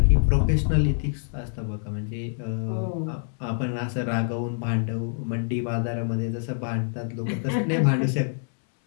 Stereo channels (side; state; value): right; silent; digital silence